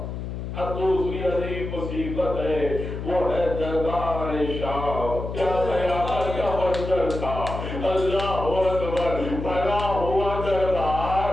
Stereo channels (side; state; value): left; noise; hum, 6 dB below the sound